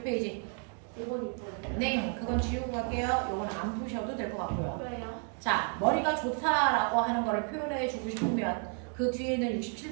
5번, 6번. 네, 그건 지우고 갈게요. 이건 안 푸셔도 될 것 같고요. 왜요? 자, 머리가 좋다라고 하는 거를 표현해 주고 싶으면 그 뒤에 있는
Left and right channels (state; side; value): quieter; left; 39.5 dB